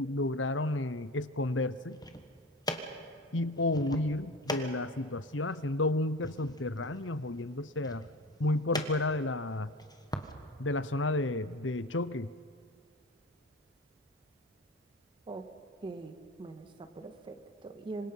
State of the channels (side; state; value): both; normal; correlation 0.32